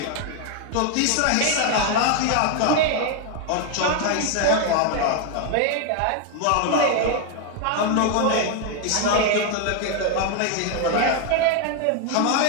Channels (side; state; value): both; different; correlation 0.01